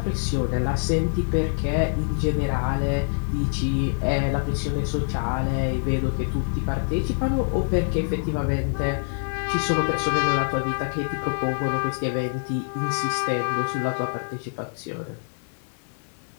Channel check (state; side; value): silent; right; digital silence